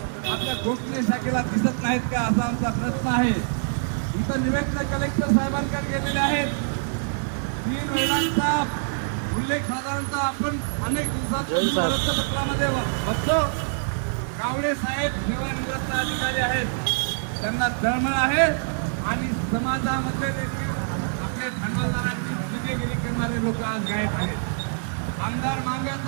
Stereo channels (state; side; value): silent; left; digital silence